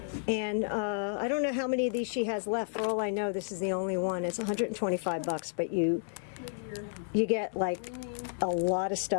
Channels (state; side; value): silent; right; digital silence